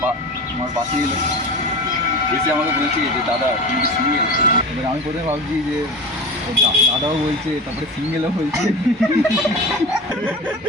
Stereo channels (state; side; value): normal; both; correlation 0.31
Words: আমার পাশে এলো, এসে আমাকে বলছে যে দাদা তুমি কি সিঙ্গেল? এবার আমি প্রথমে ভাবছি যে দাদাও বলছে, তারপরে সিঙ্গেলও বলছে।